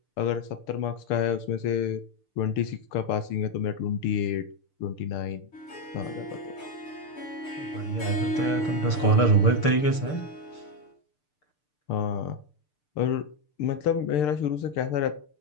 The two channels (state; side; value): late; right; 6.7 ms